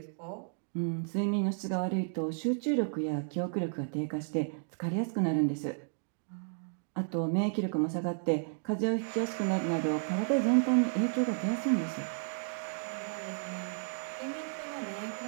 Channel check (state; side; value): silent; left; digital silence